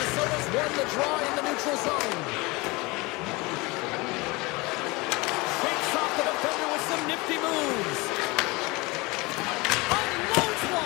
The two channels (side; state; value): right; quieter; 24.3 dB